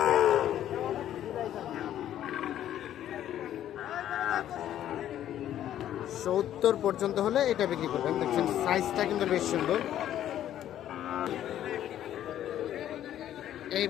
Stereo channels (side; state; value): right; quieter; 11.5 dB